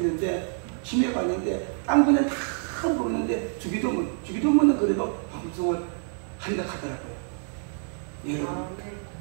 치매가 왔는데 딴 분은 다 모르는데 주기도문은 그래도 방송을 한다 하더라고요. 여러분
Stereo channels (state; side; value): silent; left; 59 dB below the other